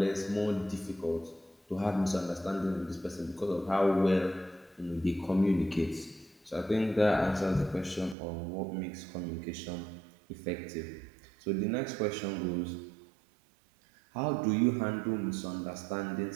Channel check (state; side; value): drops out; left; at 8.2 s